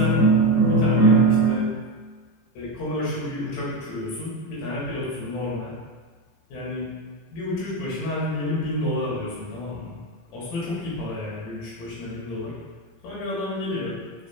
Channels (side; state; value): right; late; 18 ms